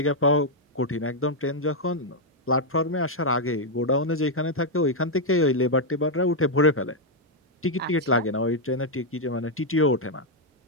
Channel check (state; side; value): normal; both; correlation -0.02